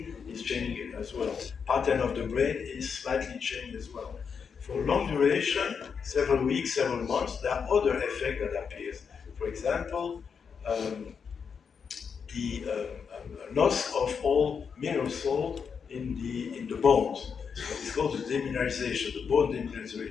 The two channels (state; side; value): quieter; right; 6.3 dB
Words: is changing as well. Pattern of the brain is slightly changed as well. For long duration, several weeks, several months, there are other effects that appear. For example, the loss of all mineral salt in the bones. It's called the demineralization, the bone